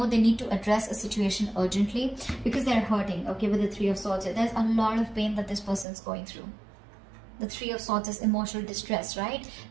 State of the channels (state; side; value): drops out; left; at 5.9 s